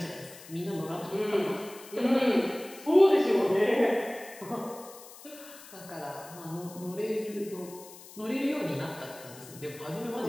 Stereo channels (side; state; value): left; noise; hiss, 18 dB below the sound